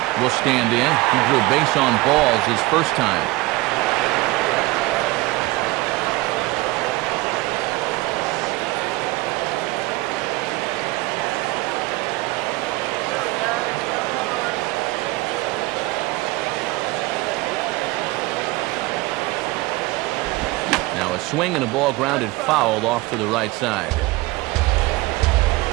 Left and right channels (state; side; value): quieter; left; 20.8 dB